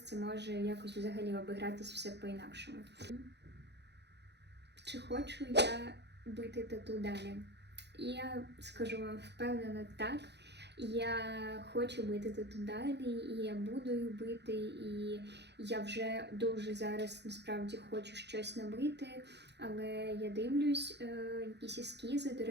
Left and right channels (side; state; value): left; late; 0.50 ms